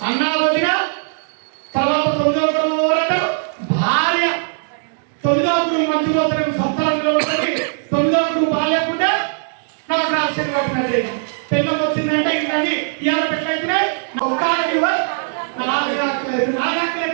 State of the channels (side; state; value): left; silent; digital silence